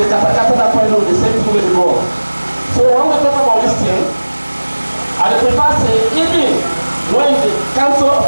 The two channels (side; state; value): both; inverted; correlation -1.00